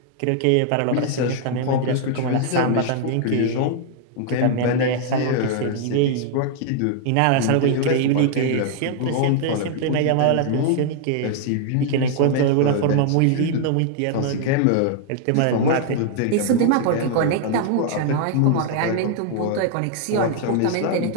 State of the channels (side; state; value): both; different; correlation 0.00